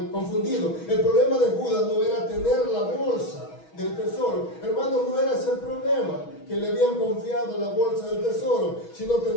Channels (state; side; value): late; right; 6.2 ms